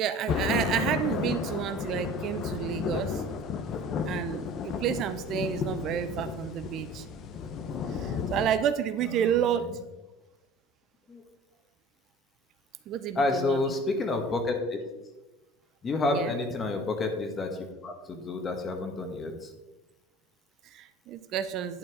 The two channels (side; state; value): both; normal; correlation 0.45